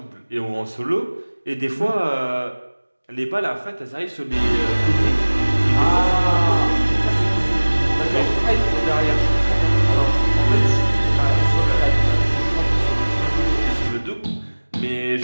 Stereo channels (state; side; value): inverted; both; correlation -1.00